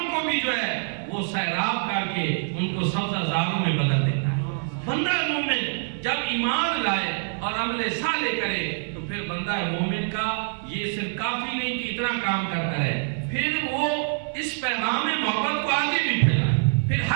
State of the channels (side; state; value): left; silent; 57 dB below the other